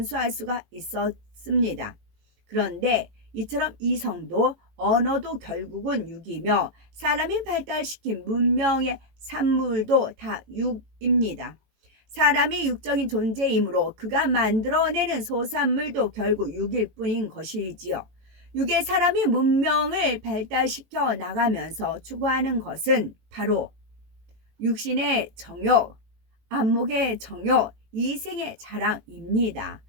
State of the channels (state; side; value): late; left; 18 ms